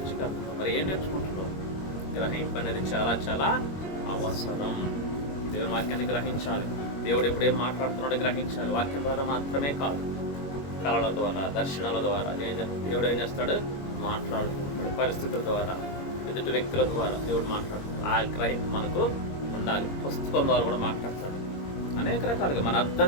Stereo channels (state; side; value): late; right; 21 ms